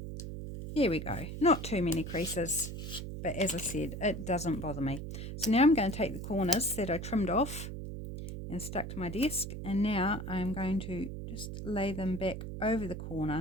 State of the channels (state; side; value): noise; right; hum, 7 dB below the sound